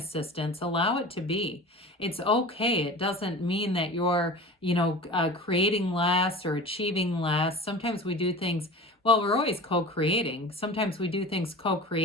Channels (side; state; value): both; normal; correlation 0.36